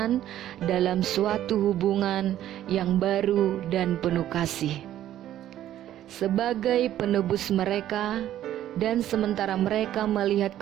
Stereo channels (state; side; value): quieter; left; 12.3 dB